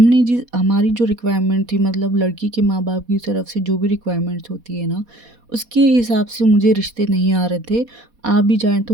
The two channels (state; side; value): late; left; 4.2 ms